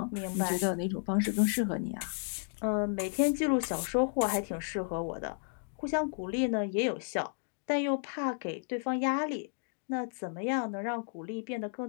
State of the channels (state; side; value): silent; right; 56 dB below the other